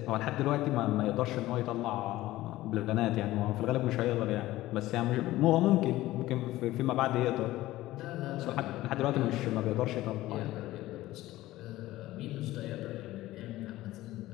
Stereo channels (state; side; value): quieter; right; 16.5 dB